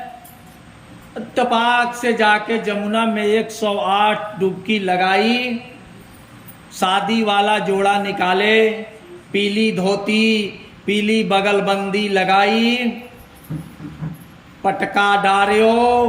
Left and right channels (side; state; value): both; identical; correlation 1.00